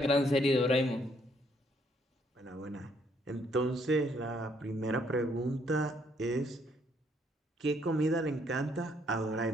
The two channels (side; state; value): both; normal; correlation 0.69